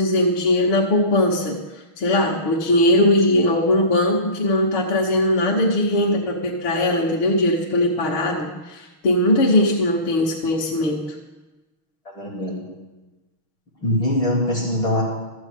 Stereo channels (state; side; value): late; right; 6.3 ms